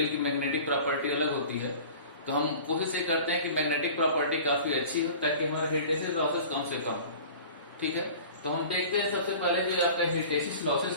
की मैग्नेटिक प्रॉपर्टी अलग होती है, तो हम कोशिश ये करते हैं कि मैग्नेटिक प्रॉपर्टी काफी अच्छी हो ताकि हमारे हिस्टैसिस लॉसेस कम से कम हो। ठीक है, तो हम देखते हैं सबसे पहले जो आपका हिस्टैसिस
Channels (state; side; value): inverted; both; correlation -0.41